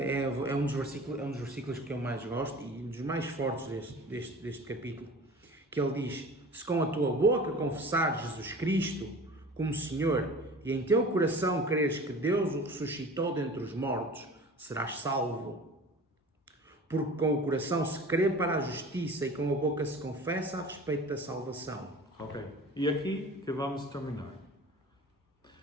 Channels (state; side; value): normal; both; correlation 0.40